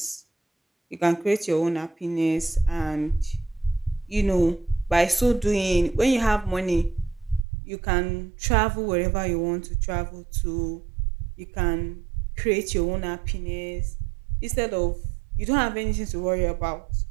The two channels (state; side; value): drops out; left; at 7.4 s